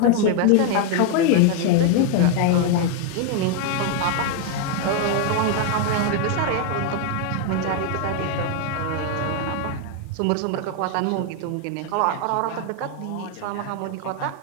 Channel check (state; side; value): different; both; correlation 0.00